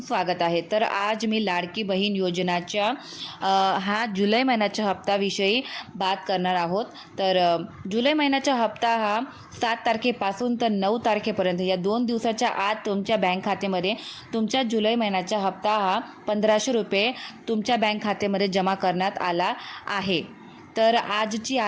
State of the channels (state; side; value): identical; both; correlation 1.00